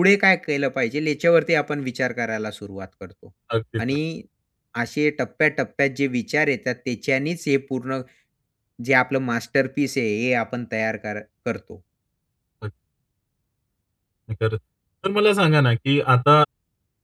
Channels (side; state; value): both; identical; correlation 1.00